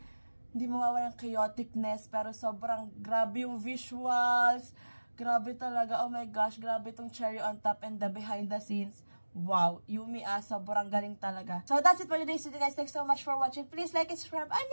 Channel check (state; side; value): inverted; both; correlation -1.00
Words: hindi mawawala ng chaoticness, pero sobrang grabe yung visuals, grabe talaga, oh my gosh, grabe tong cherry on top and the behind the scenes. Wow, Yumi sobrang galing talaga. So that's it for today's video guys, thanks so much for watching, please like and subscribe,